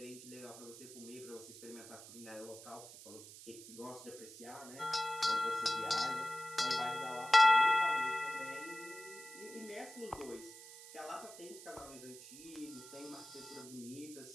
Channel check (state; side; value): noise; right; hiss, 15 dB below the sound